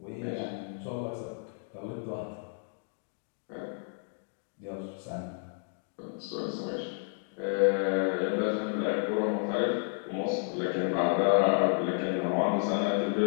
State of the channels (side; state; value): right; silent; 57 dB below the other